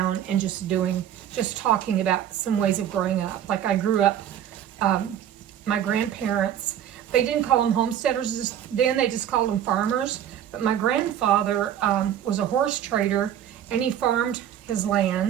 and just talking about some ways of growing up. Like I grew up, my grandparents, they didn't call them homesteaders then, they just called them farmers. But my grandfather was a horse trader, and he farmed his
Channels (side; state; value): left; quieter; 10.3 dB